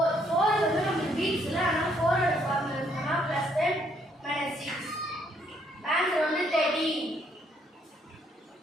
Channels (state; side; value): normal; both; correlation 0.70